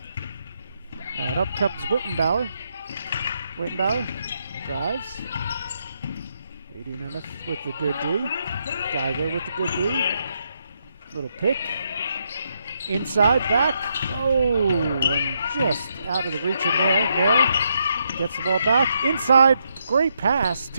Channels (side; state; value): both; inverted; correlation -0.78